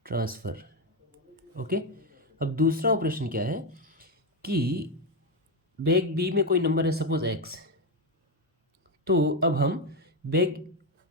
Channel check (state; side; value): normal; both; correlation 0.09